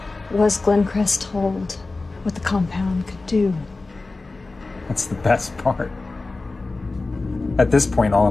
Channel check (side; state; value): right; quieter; 3.5 dB